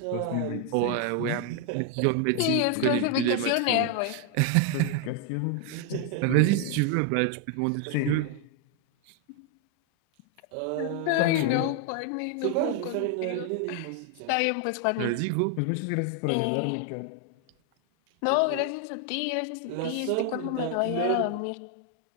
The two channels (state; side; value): different; both; correlation 0.01